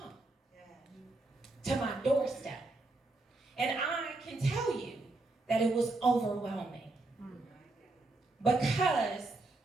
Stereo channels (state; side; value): quieter; left; 3.1 dB